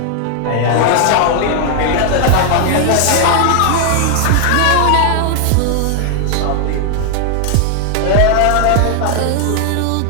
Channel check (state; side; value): different; both; correlation 0.00